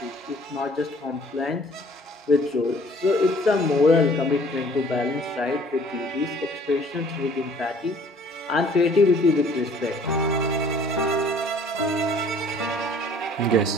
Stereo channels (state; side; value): normal; both; correlation 0.55